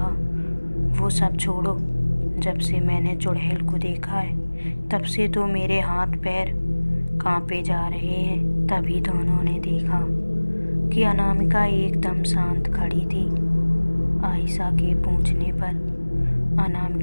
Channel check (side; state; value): both; inverted; correlation -1.00